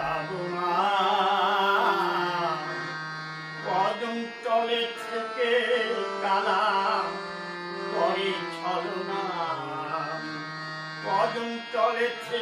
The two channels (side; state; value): both; identical; correlation 1.00